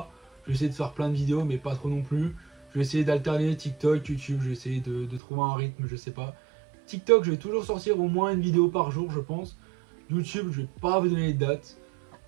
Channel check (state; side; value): drops out; left; at 5.2 s